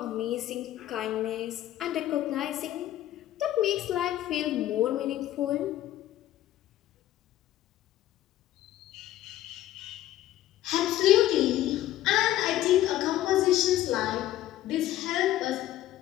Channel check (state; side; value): quieter; right; 13.8 dB